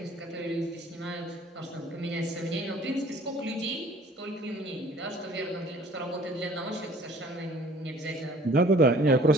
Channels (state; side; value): normal; both; correlation 0.53